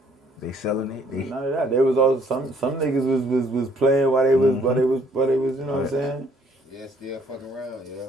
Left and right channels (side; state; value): both; normal; correlation 0.63